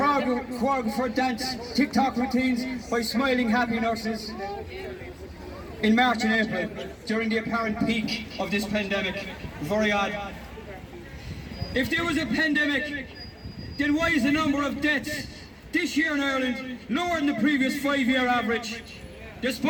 dance TikTok routines by smiling, happy nurses. In March and April, during the apparent peak of this pandemic. Very odd. If there was a pandemic, then why is the number of deaths this year in Ireland lower than the previous 5-year average? There's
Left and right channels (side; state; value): both; identical; correlation 1.00